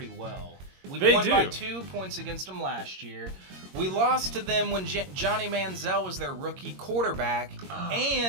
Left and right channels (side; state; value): left; late; 22 ms